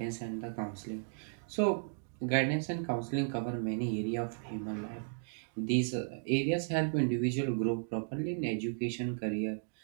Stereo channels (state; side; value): silent; left; digital silence